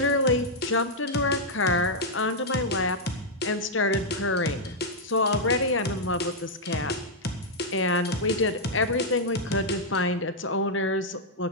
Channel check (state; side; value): normal; both; correlation -0.04